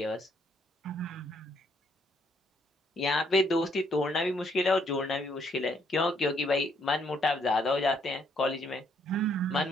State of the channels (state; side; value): normal; both; correlation 0.69